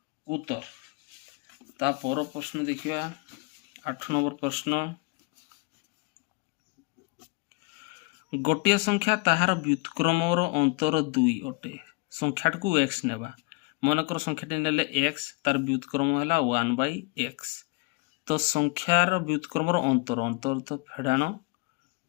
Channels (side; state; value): right; quieter; 26.9 dB